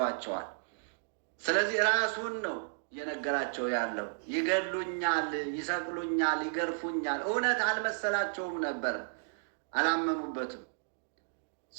ስለዚህ ራሱን ነው እየነገራቸው ያለው። ይገድሉኛል፣ ይሰቅሉኛል፣ ይገርፉኛል። እውነት አልመሰላቸውም ነበር፣ አላመኑበትም።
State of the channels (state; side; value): silent; left; digital silence